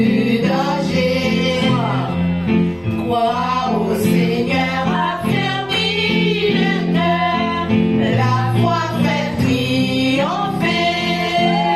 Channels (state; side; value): noise; left; rumble, 29 dB below the sound